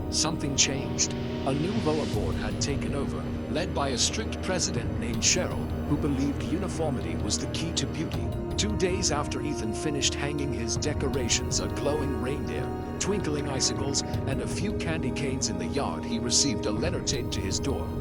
something changed. A new HOA board had taken over, led by a strict president named Cheryl, who believed uniformity was the key to beauty. 2 days after Ethan finished hanging his decorations, a glowing reindeer, twinkling icicles, and a few candy canes in the yard, he received a letter taped to his door.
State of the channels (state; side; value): identical; both; correlation 1.00